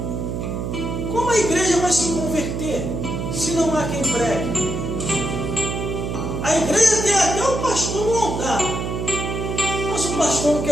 Como a igreja vai se converter se não há quem pregue? A igreja tem até o pastor no altar, mas o pastor não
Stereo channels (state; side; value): noise; right; hum, 3 dB below the sound